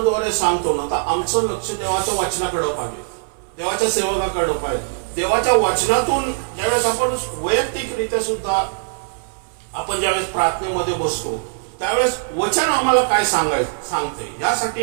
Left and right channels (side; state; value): left; silent; 63 dB below the other